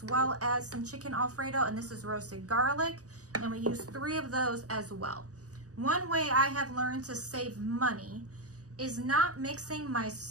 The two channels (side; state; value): left; late; 0.66 ms